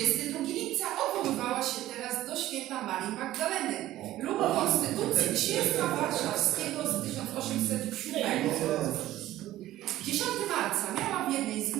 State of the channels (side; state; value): left; quieter; 14.7 dB